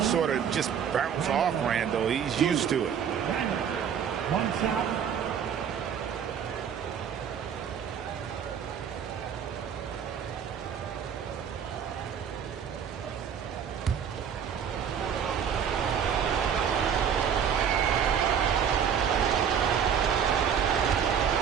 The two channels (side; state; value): left; quieter; 8.0 dB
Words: sort of just bounce off Randall. He's used to it. One shot.